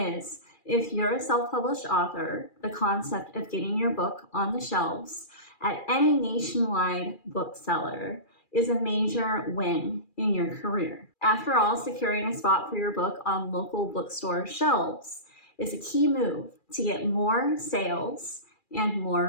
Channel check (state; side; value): late; right; 2.4 ms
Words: if you're a self-published author, the concept of getting your book on the shelves at any nationwide bookseller is a major win in your career. After all, securing a spot for your book on local bookstore shelves is a key move to get more sales and